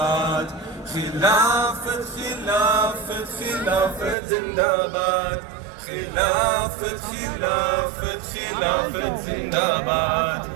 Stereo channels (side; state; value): left; drops out; at 4.2 s